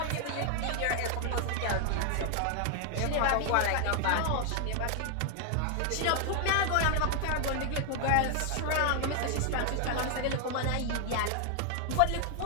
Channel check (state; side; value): different; both; correlation 0.00